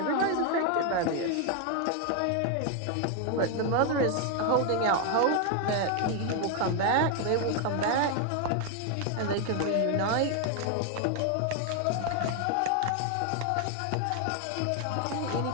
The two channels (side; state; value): both; different; correlation 0.01